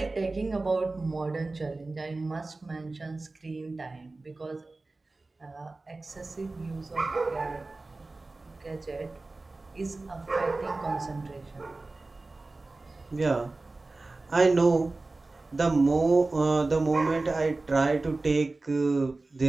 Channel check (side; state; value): left; quieter; 3.3 dB